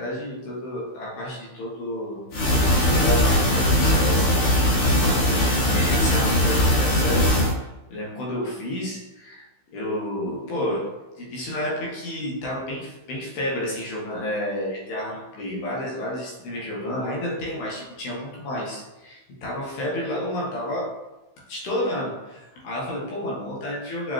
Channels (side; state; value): right; late; 15 ms